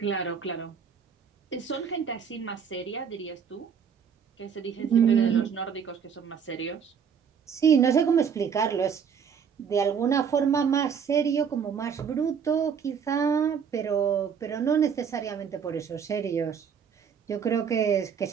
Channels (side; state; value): left; quieter; 7.0 dB